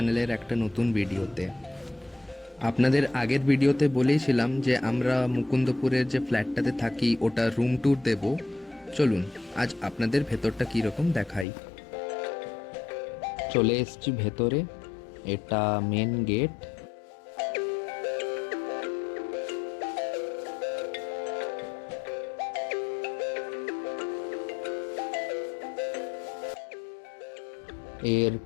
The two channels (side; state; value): right; drops out; at 11.5 s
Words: একটা নতুন ভিডিওতে। আপনাদের আগের ভিডিওতে বলেইছিলাম যে আমরা মুকুন্দপুরের যে ফ্ল্যাটটাতে থাকি ওটা রুম ট্যুর দেব। চলুন আজ আপনাদের ভেতরটা কীরকম দেখাই। চলে এসছি ভেতরে, এটা মেন গেট। এর